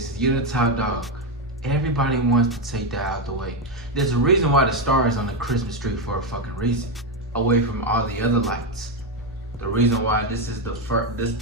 is. You're the top dog. Everybody wants to take that out the way. There's a reason why the star is on the Christmas tree, for a fucking reason, away from all the other lights. The reason why this is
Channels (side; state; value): both; normal; correlation 0.07